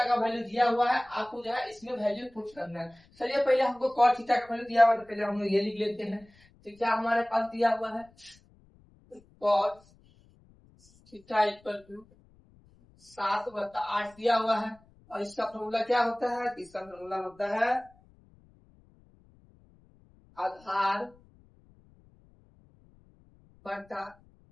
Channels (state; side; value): noise; left; rumble, 29 dB below the sound